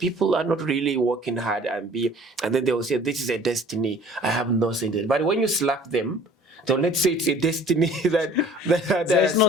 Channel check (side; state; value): both; normal; correlation 0.50